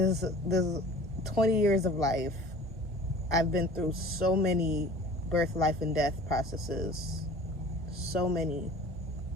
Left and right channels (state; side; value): normal; both; correlation 0.44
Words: years of life, I've been through so many birth, life, and death processes. So many